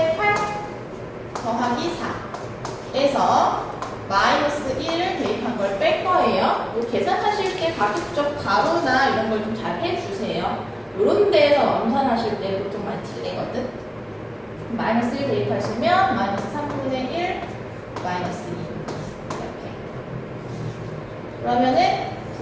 8 더하기 4에서 마이너스 1을 대입한 걸 뺄 거예요. 뭐 계산하실 때 가급적 가로나 이런 걸 좀 잘 해주세요. 이런 데에서 엄선하실 때 보통 많이 틀리거든. 마이너스 1 대입하시면 마이너스 3분의 1 마이너스 2 이렇게. 그러면은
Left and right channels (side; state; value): both; identical; correlation 1.00